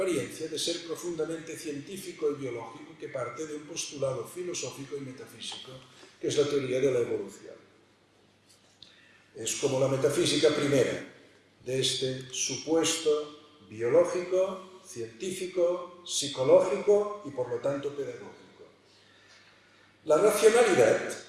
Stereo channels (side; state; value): both; identical; correlation 1.00